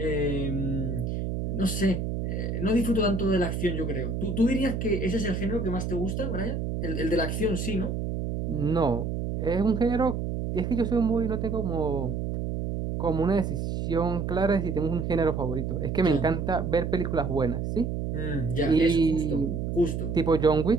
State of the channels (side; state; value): right; noise; hum, 2 dB below the sound